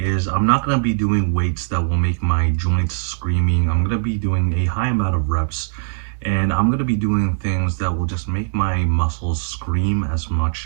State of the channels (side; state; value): left; silent; 66 dB below the other